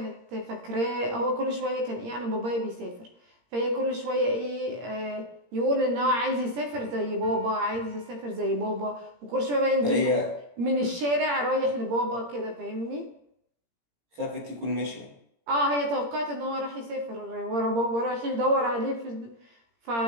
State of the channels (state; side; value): late; left; 17 ms